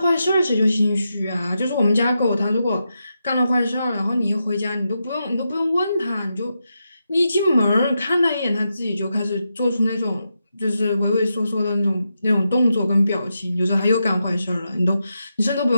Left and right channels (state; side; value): inverted; both; correlation -0.86